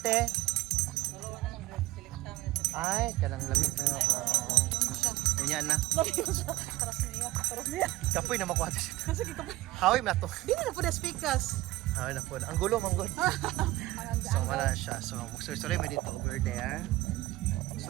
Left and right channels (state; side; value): quieter; left; 17.2 dB